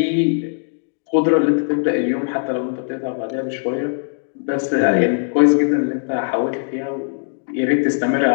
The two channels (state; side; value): silent; right; digital silence